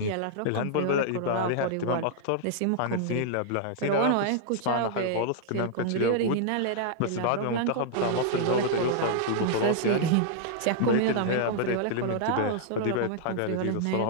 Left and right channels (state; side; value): different; both; correlation -0.01